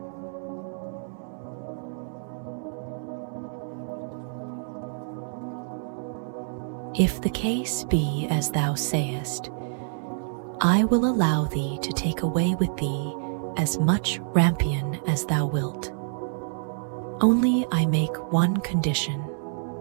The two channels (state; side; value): silent; left; 60 dB below the other